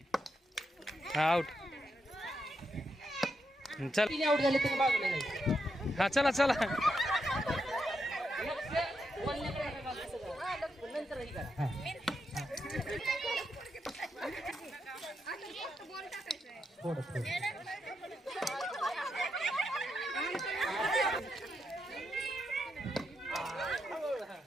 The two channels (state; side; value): normal; both; correlation 0.83